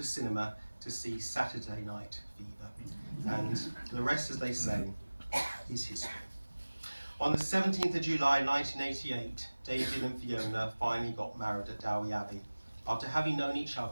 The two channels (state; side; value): inverted; both; correlation -1.00